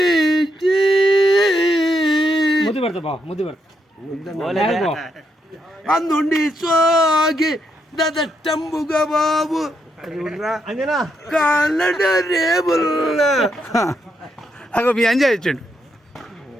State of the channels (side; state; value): both; normal; correlation 0.79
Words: అందుండి సోగి దదట్టంబుగా బాబు కాళ్ళ రేబుల్ అగో మీ అంజా ఇచ్చాడు